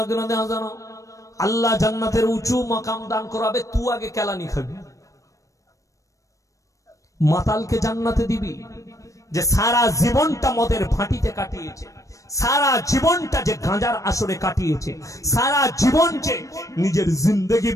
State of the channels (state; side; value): late; right; 0.16 ms